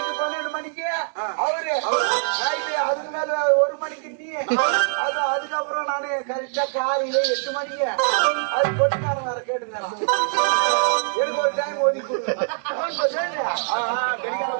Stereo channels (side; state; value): left; silent; digital silence